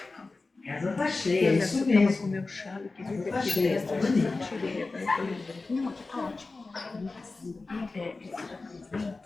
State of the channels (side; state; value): right; quieter; 3.6 dB